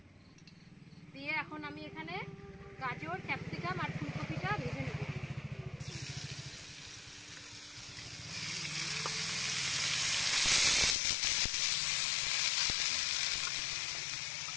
দিয়ে এখন আমি এখানে গাজর, ক্যাপসিকাম আর ফুলকপিটা ভেজে নেব।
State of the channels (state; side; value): drops out; right; at 11.0 s